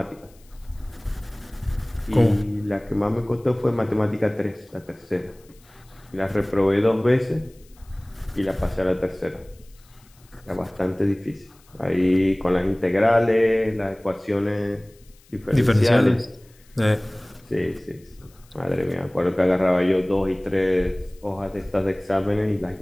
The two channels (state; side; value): noise; left; hiss, 30 dB below the sound